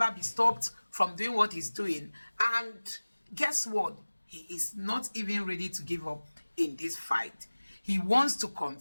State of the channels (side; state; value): both; inverted; correlation -1.00